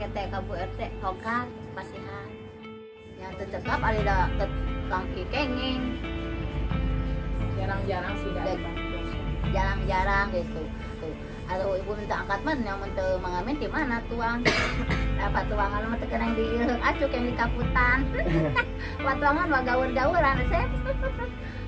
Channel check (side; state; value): both; identical; correlation 1.00